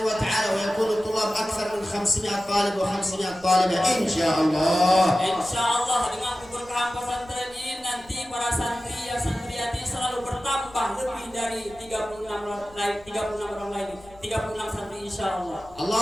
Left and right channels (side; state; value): left; noise; rumble, 24 dB below the sound